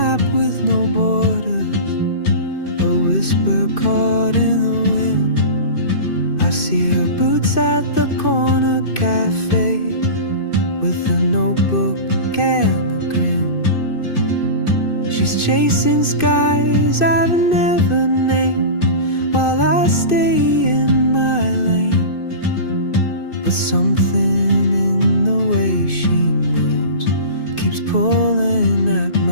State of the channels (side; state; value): right; late; 2.5 ms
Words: with no borders, a whisper caught in the wind. I see her boots at the corner cafe, with a notebook and a grin. She's chasing skies I've never named, while I stay in my lane. But something in the way she moves keeps pulling at